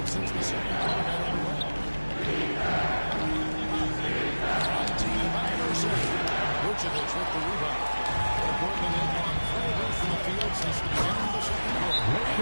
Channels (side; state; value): both; inverted; correlation -1.00